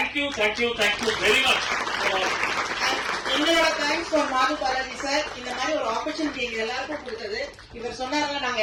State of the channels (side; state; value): both; identical; correlation 1.00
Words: you very much. எங்களோட தேங்க்ஸ் ஃபார் மாது பாலாஜி சார். இந்த மாதிரி ஒரு ஆப்பர்ச்சுனிட்டி எங்க எல்லாருக்கும் கொடுத்தது. இவர் சொன்னாங்க, நாங்க